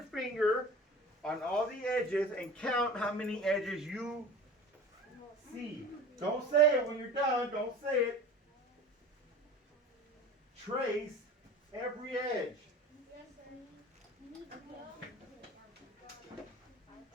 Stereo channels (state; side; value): normal; both; correlation 0.39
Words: finger on all the edges and count how many edges you see. Don't say it when you're done. Don't say it. Trace every edge.